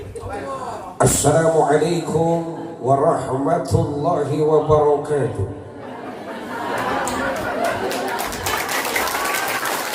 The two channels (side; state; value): both; identical; correlation 1.00